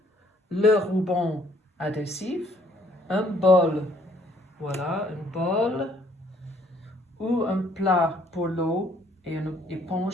le ruban adhésif, un bol, voilà, un bol ou un plat pour l'eau et une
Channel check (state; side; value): normal; both; correlation 0.63